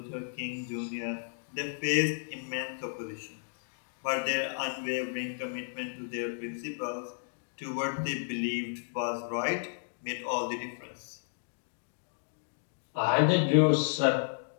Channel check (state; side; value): silent; right; digital silence